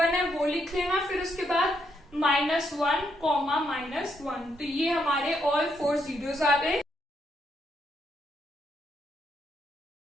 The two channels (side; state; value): both; normal; correlation 0.77